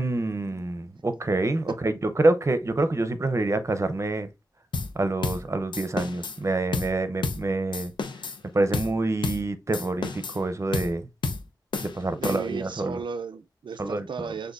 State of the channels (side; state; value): both; normal; correlation 0.84